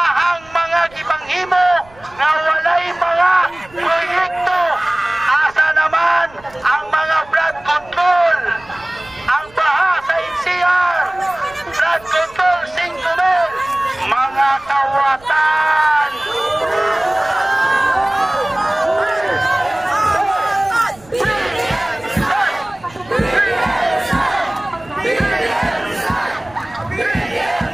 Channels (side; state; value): right; noise; rumble, 25 dB below the sound